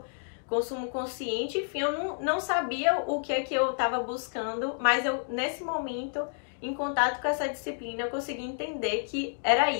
consumo consciente, enfim, eu não sabia o que é que eu estava buscando, mas eu, nesse momento, em contato com essa disciplina, eu consegui entender que era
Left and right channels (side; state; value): right; silent; digital silence